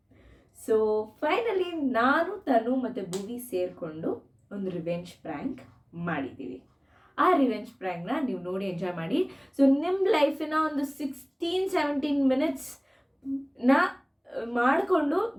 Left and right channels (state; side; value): identical; both; correlation 1.00